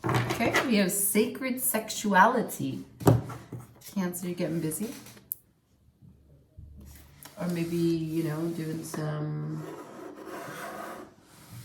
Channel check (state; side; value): identical; both; correlation 1.00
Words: Okay, we have sacred sexuality. Cancer, you're getting busy. Or maybe, you know, doing some